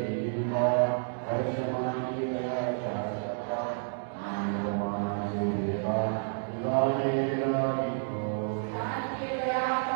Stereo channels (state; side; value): silent; left; digital silence